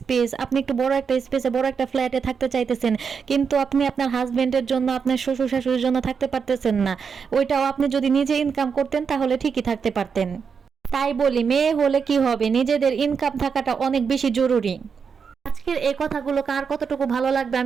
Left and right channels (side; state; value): left; quieter; 6.1 dB